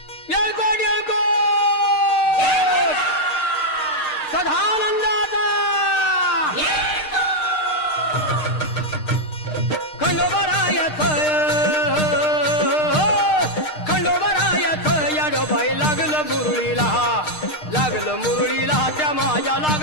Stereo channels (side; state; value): right; late; 6.5 ms